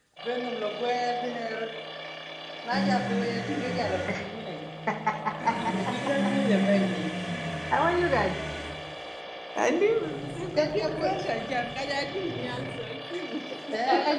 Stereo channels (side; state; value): both; identical; correlation 1.00